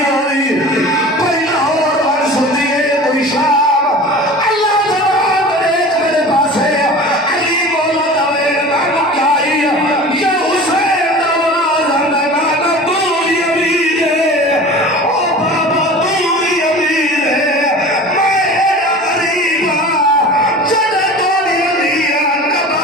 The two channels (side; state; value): both; normal; correlation 0.38